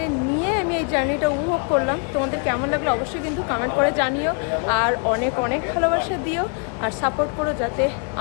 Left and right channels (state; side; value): quieter; right; 38.5 dB